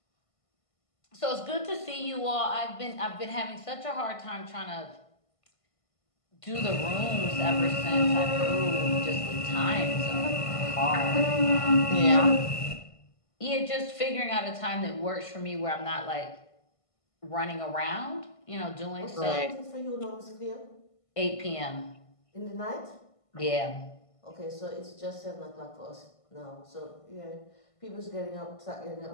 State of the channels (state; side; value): late; right; 1.5 ms